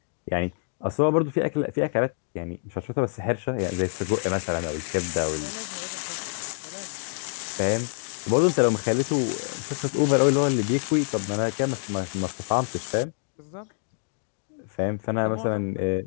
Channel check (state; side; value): silent; right; digital silence